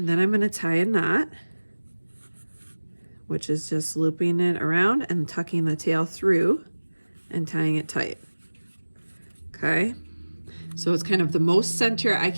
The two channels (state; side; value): inverted; both; correlation -1.00